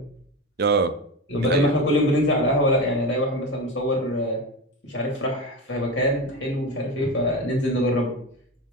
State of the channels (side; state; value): both; normal; correlation 0.22